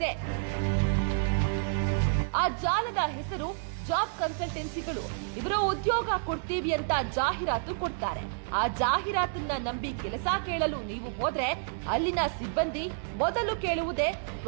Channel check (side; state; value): left; silent; digital silence